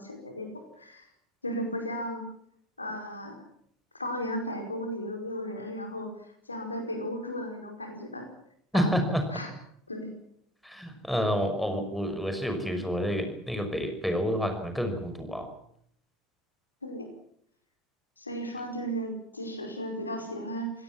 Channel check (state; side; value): normal; both; correlation 0.38